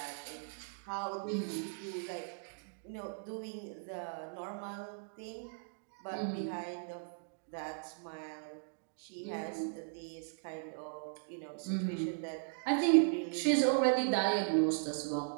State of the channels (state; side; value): silent; left; digital silence